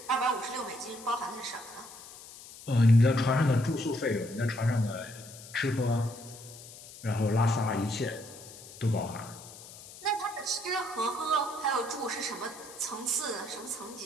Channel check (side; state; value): left; noise; hiss, 17 dB below the sound